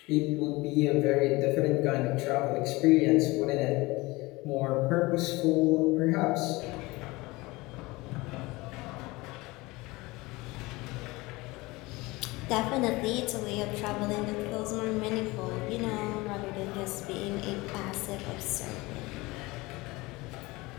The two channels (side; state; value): right; quieter; 22.2 dB